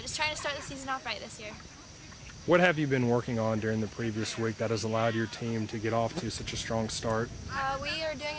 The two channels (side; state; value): both; identical; correlation 1.00